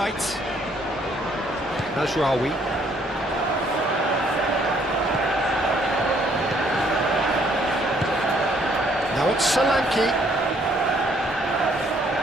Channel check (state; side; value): normal; both; correlation 0.66